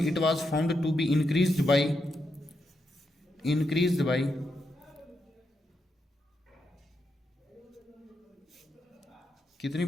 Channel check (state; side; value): normal; both; correlation 0.83